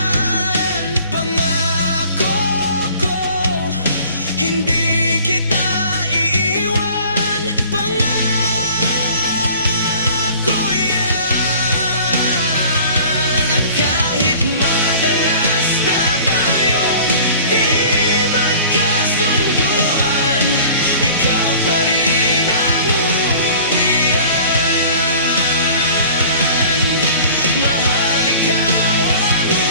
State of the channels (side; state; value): both; inverted; correlation -0.46